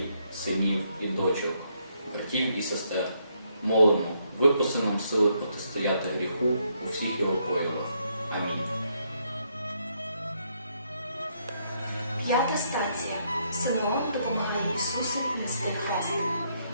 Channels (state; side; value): inverted; both; correlation -0.74